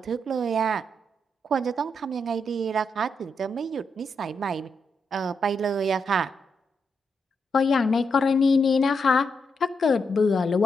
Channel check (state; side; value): normal; both; correlation 0.82